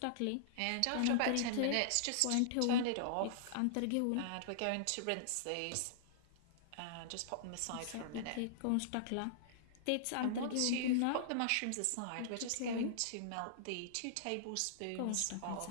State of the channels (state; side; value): different; both; correlation -0.02